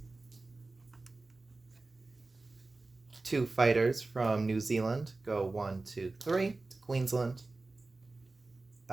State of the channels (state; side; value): quieter; left; 3.4 dB